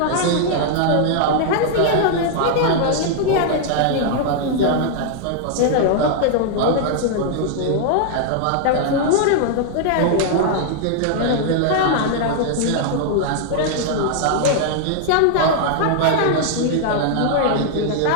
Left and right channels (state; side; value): different; both; correlation -0.01